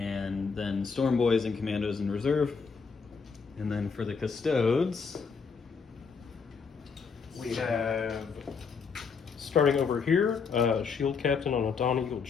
then storm boys and commandos in reserve. And then for the Custodes, we have, starting over here, Shield Captain on a Dawn Eagle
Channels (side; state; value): right; quieter; 5.5 dB